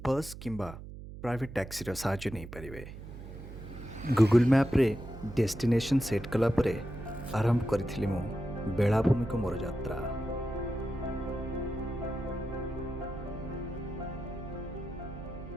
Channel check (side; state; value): right; noise; hum, 12 dB below the sound